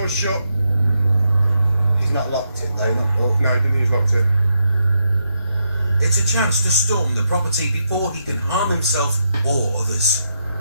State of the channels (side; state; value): both; inverted; correlation -0.81